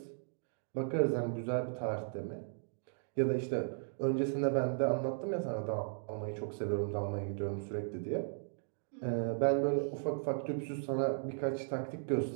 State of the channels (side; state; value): left; silent; digital silence